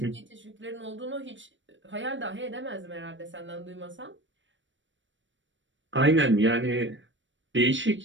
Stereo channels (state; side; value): late; left; 0.55 ms